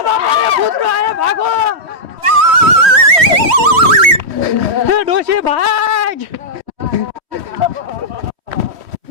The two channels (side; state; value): left; late; 3.1 ms